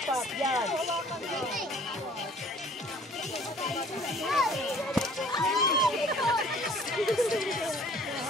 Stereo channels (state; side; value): normal; both; correlation 0.54